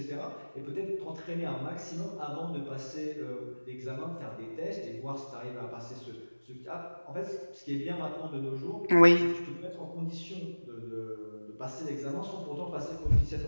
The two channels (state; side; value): inverted; both; correlation -1.00